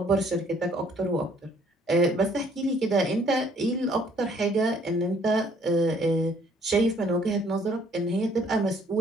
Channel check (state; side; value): normal; both; correlation 0.62